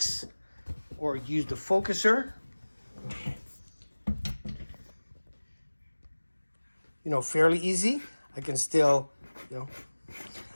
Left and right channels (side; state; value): both; inverted; correlation -1.00